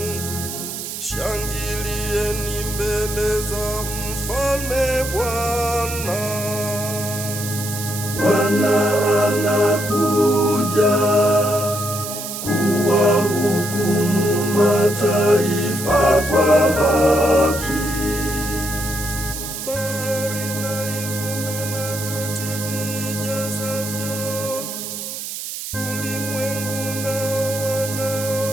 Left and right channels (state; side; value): noise; right; hiss, 7 dB below the sound